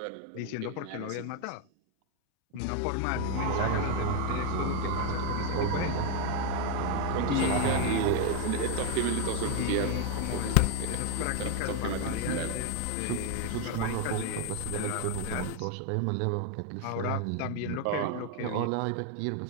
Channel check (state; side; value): different; both; correlation 0.01